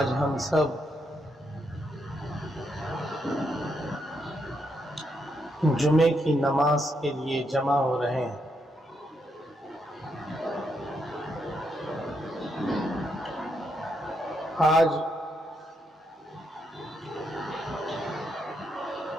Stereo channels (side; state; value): both; normal; correlation 0.79